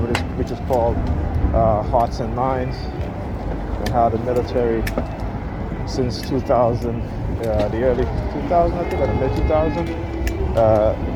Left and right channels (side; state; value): both; identical; correlation 1.00